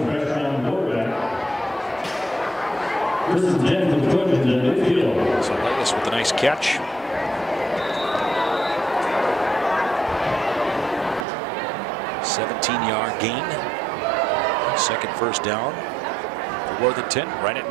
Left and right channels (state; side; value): drops out; left; at 11.2 s